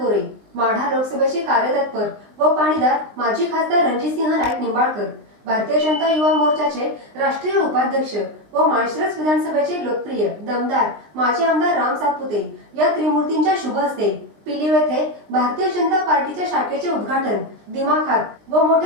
माढा लोकसभेचे कार्यतत्पर व पाणीदार माजी खासदार रणजितसिंह नाईक निंबाळकर, भारतीय जनता युवा मोर्चाचे राष्ट्रीय उपाध्यक्ष व माळशिरस विधानसभेचे लोकप्रिय दमदार माजी आमदार राम सातपुते या त्रिमूर्तींच्या शुभ हस्ते पिलीव येथे भारतीय जनता पार्टीच्या शाखेचे उद्घाटन दिमाखात व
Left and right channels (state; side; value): late; left; 20 ms